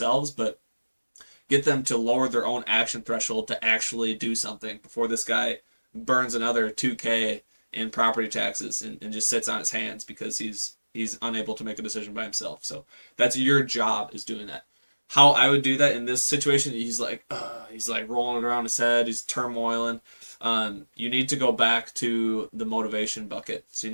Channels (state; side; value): inverted; both; correlation -1.00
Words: but get them to lower their own action threshold to actually do something before this guy burns another 2K in property taxes and just sits on his hands because he's unable to make a decision by himself. So that's your job is doing that. How I would do that in this situation, he's like rolling it around his head, he's turmoiling. You need to go back to the motivation bucket. So you